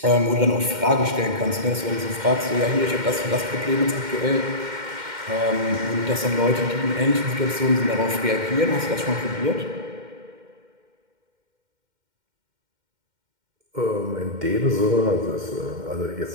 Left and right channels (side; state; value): left; late; 2.1 ms